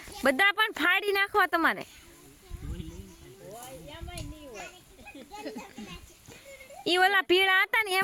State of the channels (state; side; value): identical; both; correlation 1.00